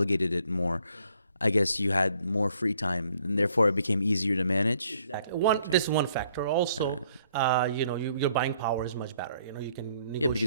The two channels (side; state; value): both; inverted; correlation -0.66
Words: it more. I guess you had more free time, and therefore it became easier to manage. Exactly. This is one factor. Also, your buying power is much better. You can negotiate. Yeah,